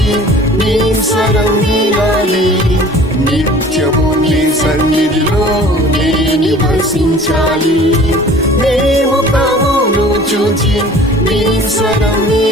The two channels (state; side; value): normal; both; correlation 0.47